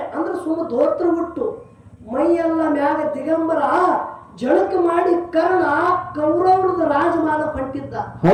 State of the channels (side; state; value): both; identical; correlation 1.00